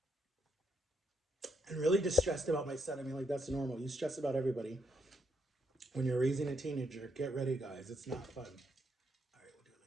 and really just stressed about my son. I mean, like, that's normal. You stress about everybody when you're raising a teenager. Get ready, guys. It's not fun. All right, we'll do it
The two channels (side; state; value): both; normal; correlation 0.76